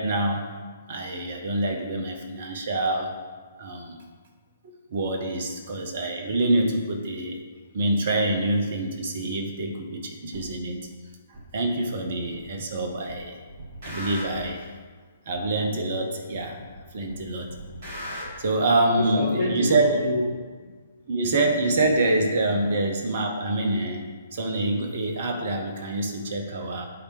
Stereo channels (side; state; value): both; inverted; correlation -0.67